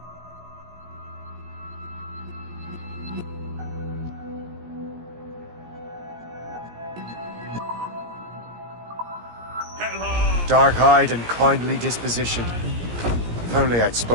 Dark-eyed and kindly dispositioned. If only I'd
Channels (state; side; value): late; left; 17 ms